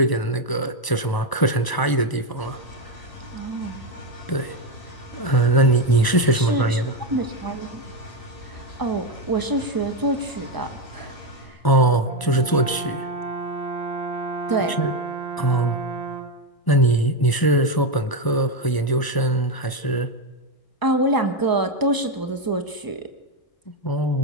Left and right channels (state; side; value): late; right; 1.0 ms